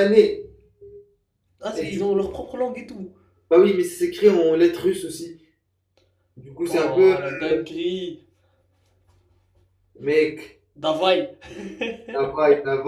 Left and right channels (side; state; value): both; identical; correlation 1.00